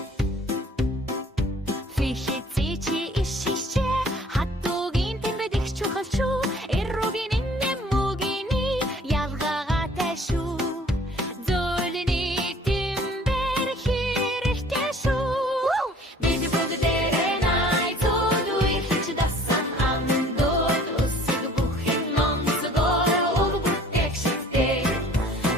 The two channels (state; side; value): normal; both; correlation 0.53